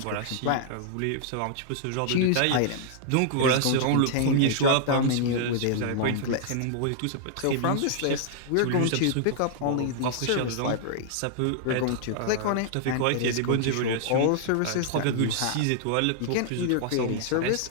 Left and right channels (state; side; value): different; both; correlation -0.01